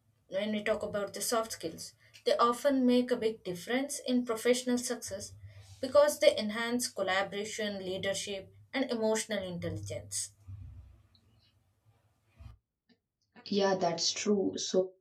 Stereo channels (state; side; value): identical; both; correlation 1.00